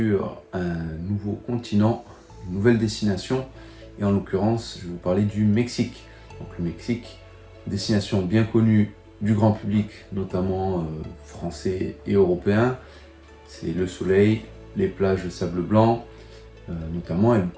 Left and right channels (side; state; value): both; identical; correlation 1.00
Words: un nouveau continent, une nouvelle destination. Et en l'occurrence, je vais vous parler du Mexique. Donc le Mexique, destination bien connue du grand public, notamment français et européen. C'est le soleil, les plages de sable blanc, notamment, et